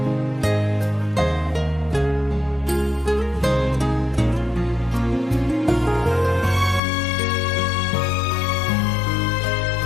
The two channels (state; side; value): drops out; right; at 6.8 s